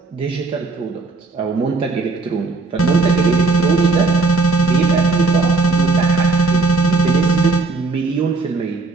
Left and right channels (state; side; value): quieter; left; 3.7 dB